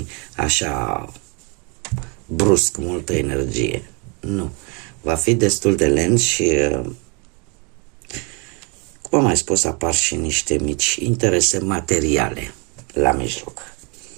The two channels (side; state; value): left; quieter; 32.5 dB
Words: așa brusc, multă energie. Nu. Va fi destul de lent și, cum am mai spus, apar și niște mici interese materiale la mijloc.